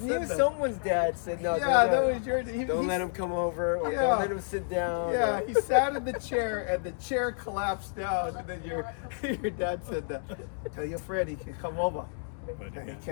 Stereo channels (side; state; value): right; silent; digital silence